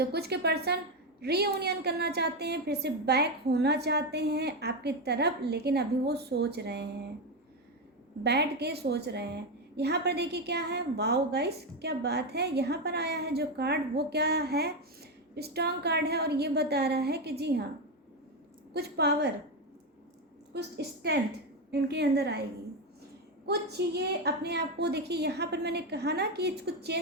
कुछ के पर्सन रीयूनियन करना चाहते हैं, फिर से बैक होना चाहते हैं आपकी तरफ, लेकिन अभी वो सोच रहे हैं, बैठ के सोच रहे हैं। यहाँ पर देखिए क्या है, वाओ गाइस क्या बात है, यहाँ पर आया है जो कार्ड वो क्या है, स्ट्रॉन्ग कार्ड है, और ये बता रहा है कि जी हाँ कुछ पावर, कुछ स्ट्रेंथ इनके अंदर आएगी, कुछ ये अपने आप को, देखिए यहाँ पर मैंने कहा ना कि कुछ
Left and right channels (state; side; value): normal; both; correlation 0.10